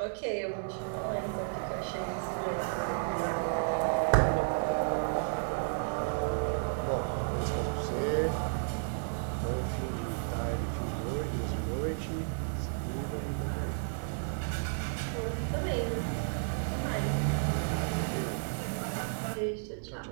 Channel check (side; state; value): left; silent; 56 dB below the other